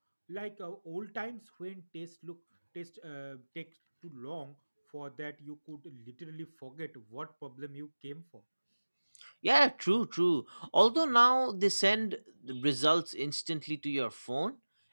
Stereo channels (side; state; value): both; inverted; correlation -1.00